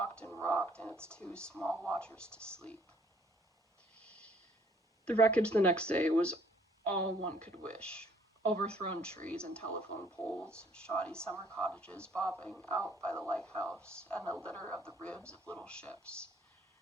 and rocked, and its two small watchers to sleep. The wreckage the next day was all one could wish. Overthrown trees and telephone poles, shoddy summer cottages bobbing out by the lighthouse, and a litter of the ribs of little ships.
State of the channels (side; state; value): both; normal; correlation 0.62